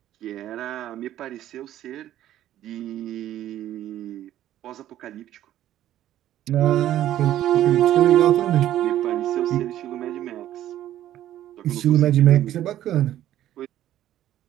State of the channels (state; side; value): quieter; left; 12.6 dB